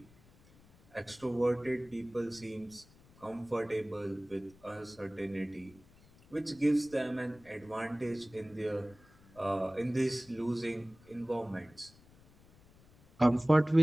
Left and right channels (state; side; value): noise; left; rumble, 26 dB below the sound